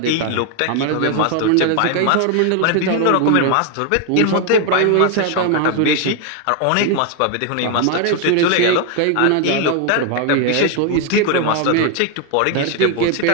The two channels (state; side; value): different; both; correlation 0.01